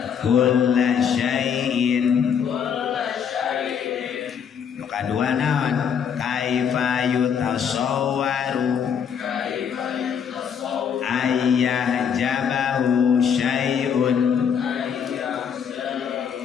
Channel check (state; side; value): quieter; right; 7.5 dB